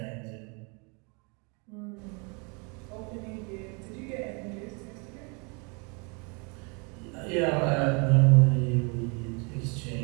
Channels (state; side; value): quieter; left; 32.9 dB